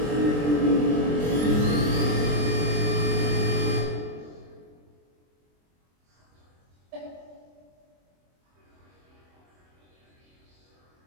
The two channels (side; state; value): left; late; 23 ms